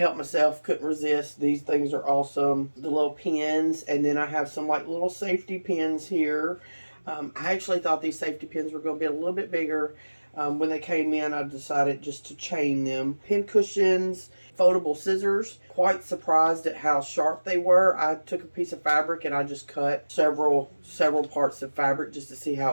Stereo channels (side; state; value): both; inverted; correlation -1.00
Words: myself, couldn't resist. These things are awesome. The little pins, and then I have some like little safety pins here. I actually thought these safety pins were going to be a little bit bigger. When they came in, I decided just to chain them. Pin cushions, foldable scissors. Quite surprised at how sharp they were. I took a piece of fabric and I just cut several parts of fabric just to see how